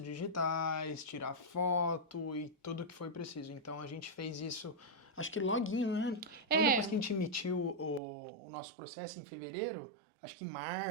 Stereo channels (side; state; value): left; drops out; at 8.0 s